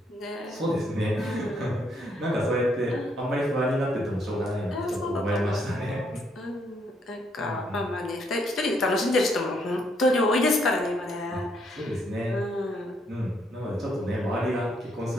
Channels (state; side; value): normal; both; correlation 0.72